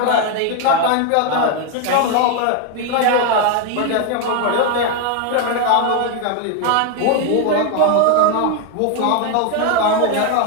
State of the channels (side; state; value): both; different; correlation 0.01